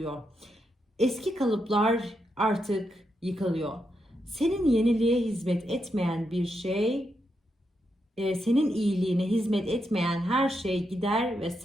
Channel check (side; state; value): both; normal; correlation 0.83